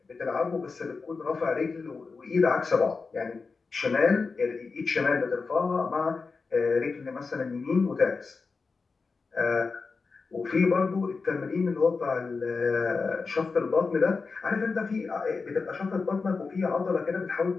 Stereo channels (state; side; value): quieter; right; 4.5 dB